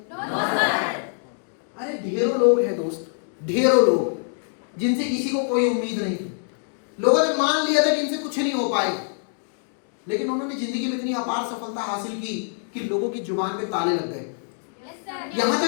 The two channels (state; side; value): silent; right; digital silence